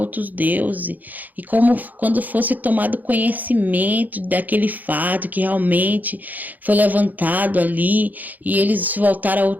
deuses, e quando fosse tomado conhecimento daquele fato que realmente foi levantado ali, e eles se voltaram a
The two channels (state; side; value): late; left; 0.083 ms